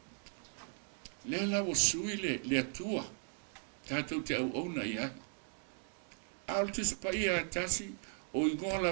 Le la o sui le atua. Tātou te au auna i ai. Altus pa ia tasi o ingoa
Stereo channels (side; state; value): left; silent; 53 dB below the other